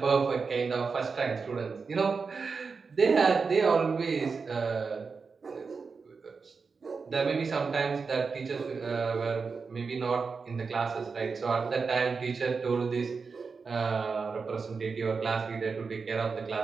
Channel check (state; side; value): quieter; left; 4.9 dB